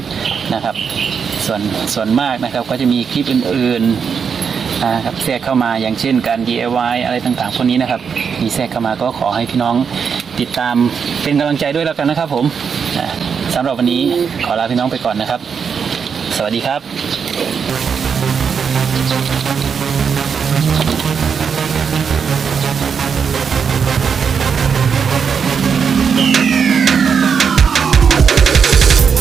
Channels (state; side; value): quieter; left; 6.5 dB